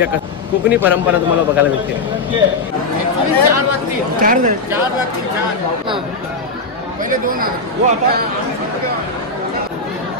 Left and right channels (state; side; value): quieter; right; 3.7 dB